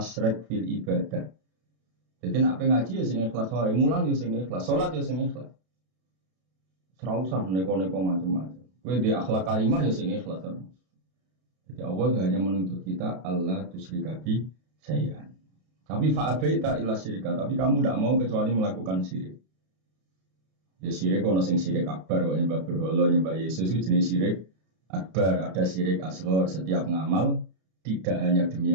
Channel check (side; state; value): left; late; 32 ms